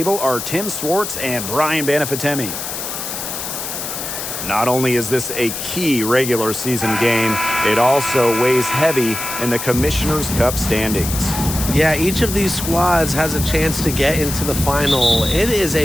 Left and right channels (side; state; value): left; noise; hiss, 6 dB below the sound